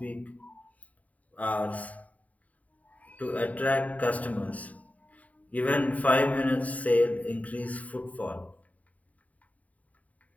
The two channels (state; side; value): late; right; 0.071 ms